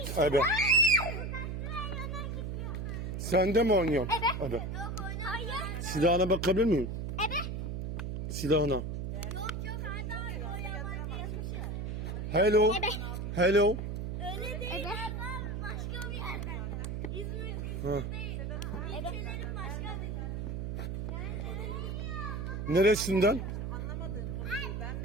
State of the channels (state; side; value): noise; right; hum, 4 dB below the sound